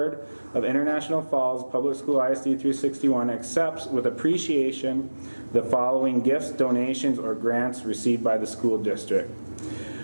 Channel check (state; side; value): inverted; both; correlation -1.00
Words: of International Falls Public School ISD 361 accepts with appreciation the following gifts, donations, or grants received by the school district.